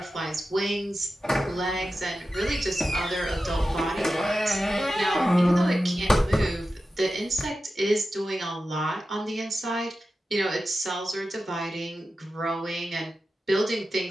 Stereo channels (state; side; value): normal; both; correlation 0.93